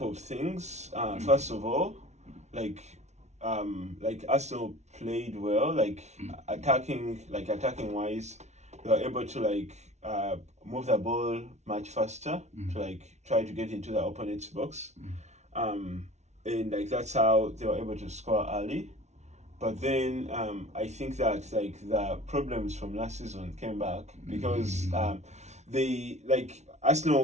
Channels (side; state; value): left; late; 0.32 ms